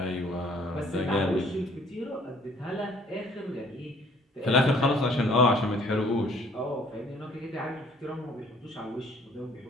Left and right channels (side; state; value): both; normal; correlation 0.58